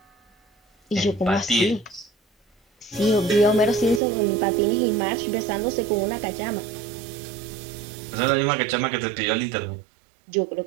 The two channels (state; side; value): drops out; left; at 4.0 s